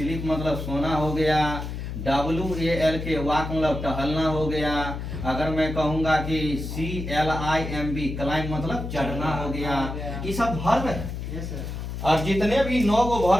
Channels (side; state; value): left; noise; hum, 6 dB below the sound